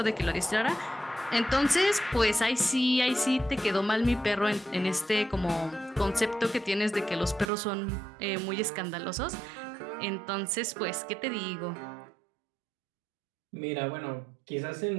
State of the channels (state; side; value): drops out; left; at 7.5 s